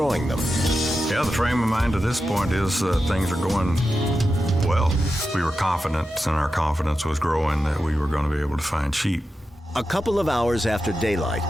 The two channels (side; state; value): both; normal; correlation 0.90